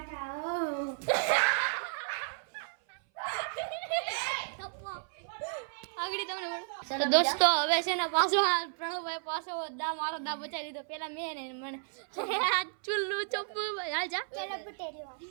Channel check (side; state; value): left; silent; 56 dB below the other